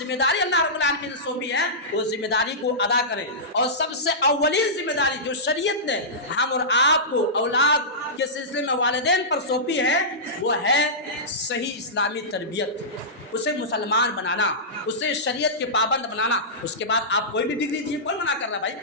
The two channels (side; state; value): both; normal; correlation -0.16